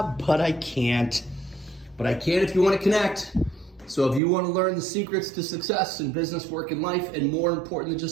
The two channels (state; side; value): drops out; left; at 4.2 s